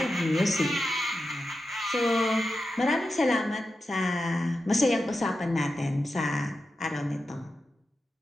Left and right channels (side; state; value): both; normal; correlation 0.91